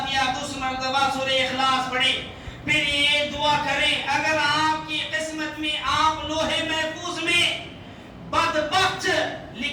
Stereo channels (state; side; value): identical; both; correlation 1.00